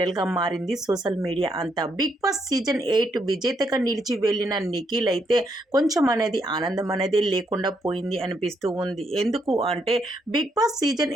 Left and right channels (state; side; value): normal; both; correlation 0.76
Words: మారింది సోషల్ మీడియా అంతా. బిగ్ బాస్ సీజన్ 8 విజేతగా నిలిచి వెళ్ళిన నిఖిల్ అయితే కొంచెం అనేది ఆనందం అనేది లేకుండా పోయింది అనిపిస్తూ ఉంది. ఎందుకు అంటే బిగ్ బాస్ సీజన్